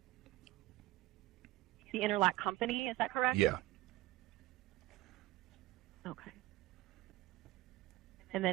company, is that correct? Yeah. Okay. And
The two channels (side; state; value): left; quieter; 17.6 dB